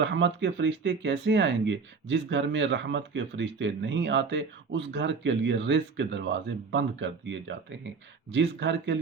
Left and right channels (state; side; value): quieter; left; 4.9 dB